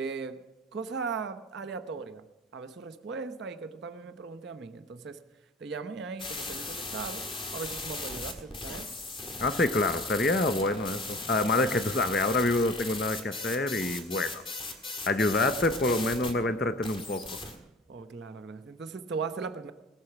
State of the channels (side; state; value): both; normal; correlation 0.42